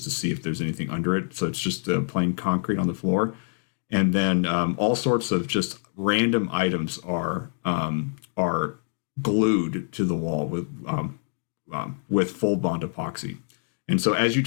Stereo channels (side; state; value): right; silent; 61 dB below the other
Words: if there's anything under it. So it's just plain concrete on the floor, and then all sorts of just random items are glued to the wall with full bond epoxy. And so as you